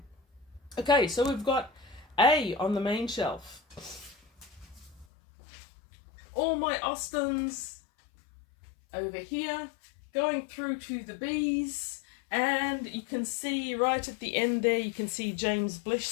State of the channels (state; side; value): drops out; right; at 5.1 s